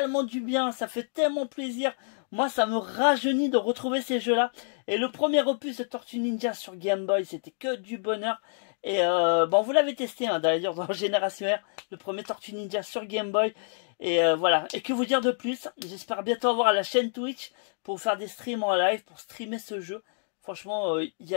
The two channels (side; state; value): right; silent; digital silence